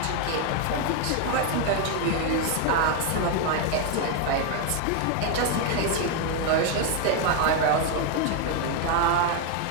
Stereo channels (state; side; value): different; both; correlation 0.01